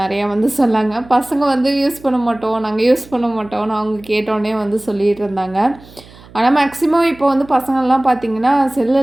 வந்து சொன்னாங்க. பசங்க வந்து யூஸ் பண்ண மாட்டோம், நாங்கள் யூஸ் பண்ண மாட்டோம்னு அவங்க கேட்டோன்னே வந்து சொல்லிகிட்டு இருந்தாங்க. ஆனால் மேக்ஸிமம் இப்போ வந்து பசங்கள்லாம் பார்த்திங்கன்னா செல்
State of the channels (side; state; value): right; noise; hum, 22 dB below the sound